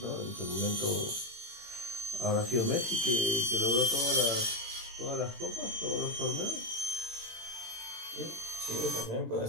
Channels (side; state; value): left; late; 18 ms